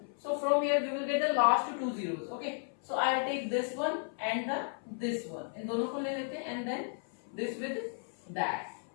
So from here we will get the last two zeros. Okay. So I will take this one and this one. इन दोनों को ले लेते हैं and then this with that.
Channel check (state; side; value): silent; right; 55 dB below the other